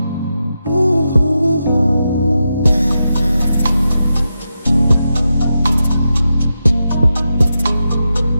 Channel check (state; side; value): inverted; both; correlation -0.88